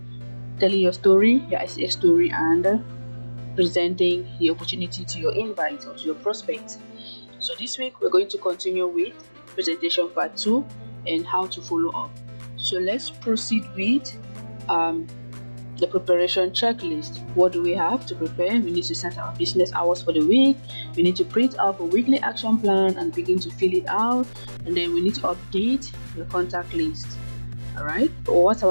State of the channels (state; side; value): inverted; both; correlation -1.00